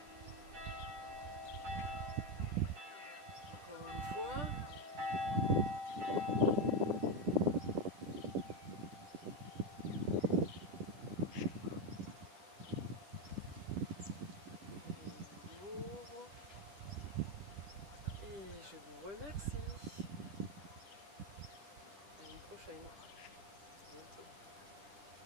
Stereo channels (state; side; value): late; left; 10 ms